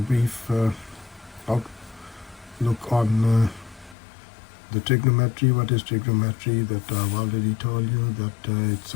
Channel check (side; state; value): right; drops out; at 4.0 s